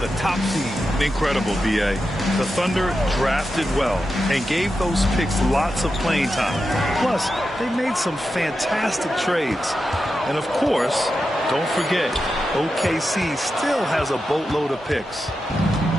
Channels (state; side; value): normal; both; correlation 0.89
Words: top seed. Incredible, B.A. The Thunder drafted well and gave those picks lots of playing time. Plus, they made some fantastic trades. And of course, don't forget, OKC still has a boatload of picks.